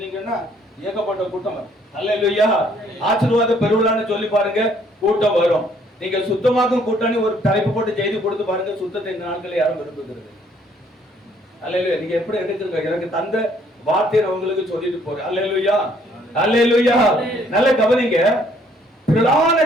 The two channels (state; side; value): normal; both; correlation 0.64